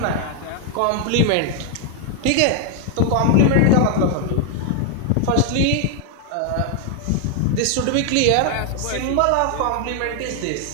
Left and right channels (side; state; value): both; different; correlation 0.00